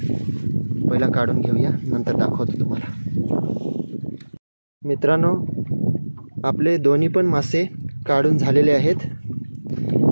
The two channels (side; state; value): both; inverted; correlation -1.00